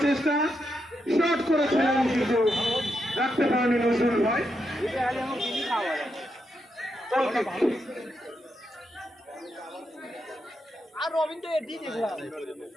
চেষ্টা শট করেছিলেন কিন্তু রাখতে পারেনি নজরুল ভাই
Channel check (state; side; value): normal; both; correlation 0.83